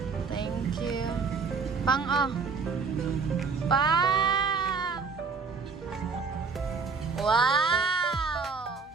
Thank you. Pang oh. Pa! Wow!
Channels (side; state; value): left; quieter; 4.9 dB